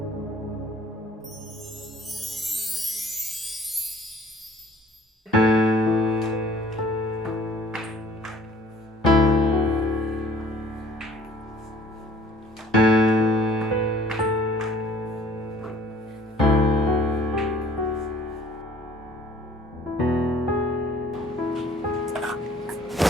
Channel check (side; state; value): both; normal; correlation 0.54